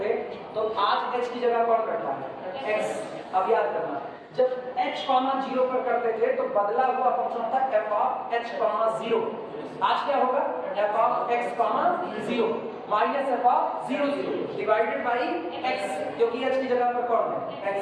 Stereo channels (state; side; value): identical; both; correlation 1.00